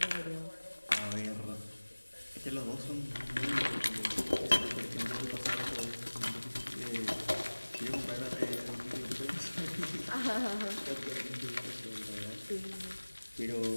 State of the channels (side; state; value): both; inverted; correlation -1.00